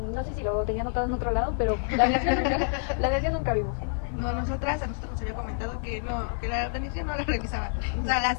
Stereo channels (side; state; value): right; silent; 59 dB below the other